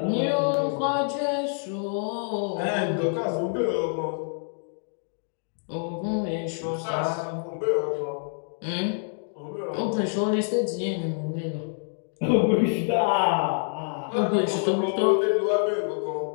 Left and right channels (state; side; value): silent; right; digital silence